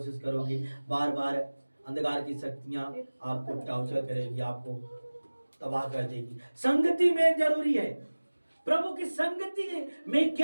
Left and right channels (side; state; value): both; inverted; correlation -1.00